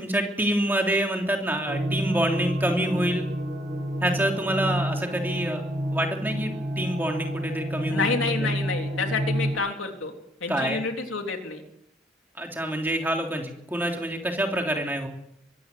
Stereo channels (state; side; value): normal; both; correlation 0.67